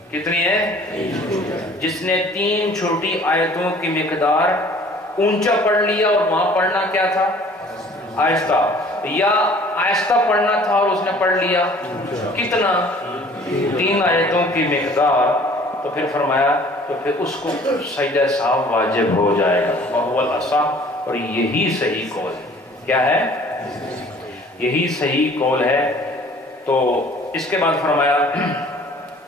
کتنی ہے؟ جس نے 3 چھوٹی آیتوں کی مقدار اونچا پڑھ لیا، اور وہاں پڑھنا کیا تھا؟ آہستہ، یا آہستہ پڑھنا تھا اور اس نے پڑھ لیا کتنا؟ 3 آیتوں کی مقدار، تو پھر فرمایا تو پھر اس کو سجدہ سہو واجب ہو جائے گا، وہو الاصح، اور یہی صحیح قول ہے۔ کیا ہے؟ یہی صحیح قول ہے۔ تو اس کے بعد فرمایا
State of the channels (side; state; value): both; normal; correlation 0.52